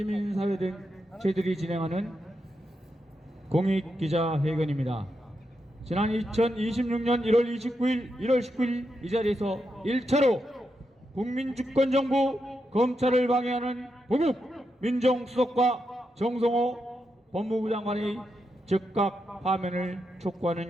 등 저희들이 진행하는 공익기자회견입니다. 지난 2026년 1월 29일, 1월 19일 이 자리에서 1차로 국민주권정부 검찰을 방해하는 보국 민정수석과 정성호 법무부 장관의 즉각 파면을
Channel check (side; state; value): both; normal; correlation 0.85